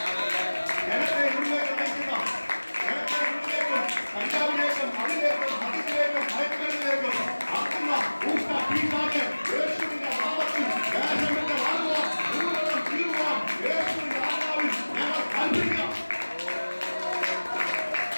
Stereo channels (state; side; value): inverted; both; correlation -1.00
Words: ജനത്തെ ഉള്ളിലേക്ക് നയിക്കുന്ന, ജനത്തെ ഉള്ളിലേക്കും കഞ്ചാവിലേക്കും അതിലേക്കും മദ്യത്തിലേക്കും മയക്കുമരുന്നിലേക്കും ആക്കുന്ന ഊഷ്ണ പിശാച് യേശുവിന്റെ നാമത്തിൽ ദേശത്തിന്റെ വാഴുവാൻ മുഴുവനും തീരുവാൻ യേശുവിന്റെ ആത്മാവിൽ ഞങ്ങൾ കൽപ്പിക്കാം.